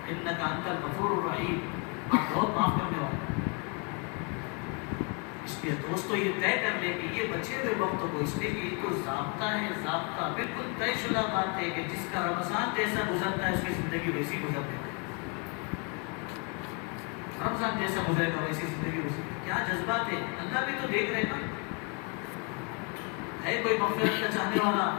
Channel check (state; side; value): quieter; right; 34.5 dB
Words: انک انت الغفور الرحیم، آپ بہت معاف کرنے والے. اس لیے دوستو یہ طے کر لے کہ یہ بچے ہوئے وقتوں کو، اس لیے کہ یہ تو ضابطہ ہے، ضابطہ بالکل طے شدہ بات ہے کہ جس کا رمضان جیسا گزرتا ہے اس کی زندگی ویسی گزرتی ہے. رمضان جیسا گزرے گا ویسی زندگی گزرے گی. کیا جذبات ہے، اللہ بھی تو دیکھ رہے نا. ہے کوئی مغفرت کا چاہنے والا،